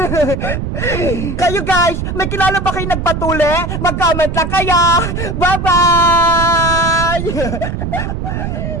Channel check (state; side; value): noise; right; rumble, 4 dB below the sound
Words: Kayo guys, may kilala ba kayo nagpatuli? Mag-comment lang kaya! Bye-bye!